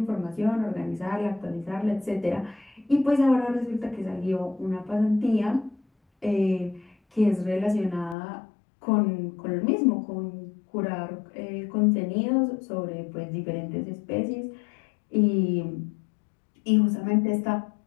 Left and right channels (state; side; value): drops out; right; at 8.2 s